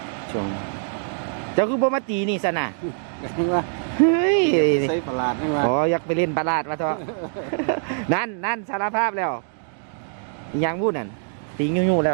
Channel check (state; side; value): silent; left; digital silence